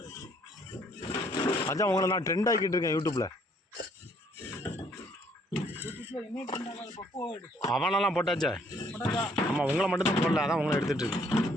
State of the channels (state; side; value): normal; both; correlation 0.65